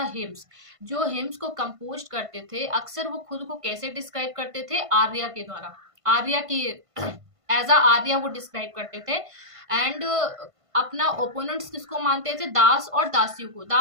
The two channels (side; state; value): left; late; 1.5 ms